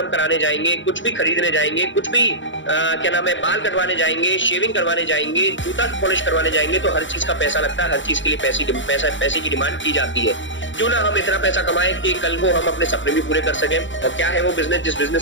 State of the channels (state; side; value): late; right; 0.55 ms